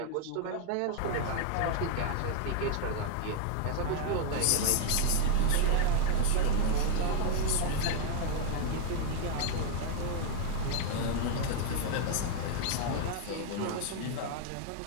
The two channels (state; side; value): different; both; correlation 0.00